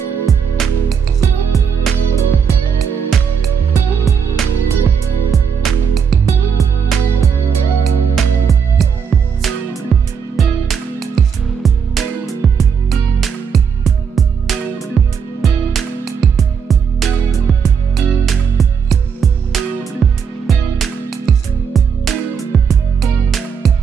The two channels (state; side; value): quieter; left; 6.7 dB